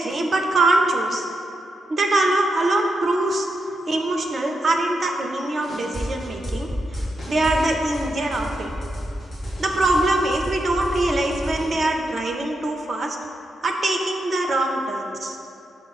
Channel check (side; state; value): both; normal; correlation 0.85